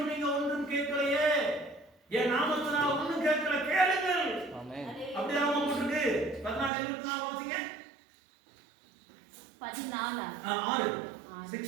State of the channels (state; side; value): drops out; left; at 6.7 s